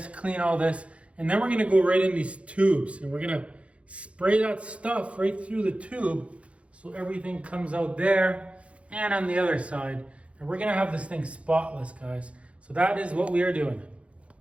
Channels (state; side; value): late; left; 0.062 ms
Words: clean all this, and then we're gonna go right in these tubes and we're gonna spray that stuff right through the tube so everything comes out there and on the other side. And we're gonna have this thing spotless, guys. So that is what we are doing.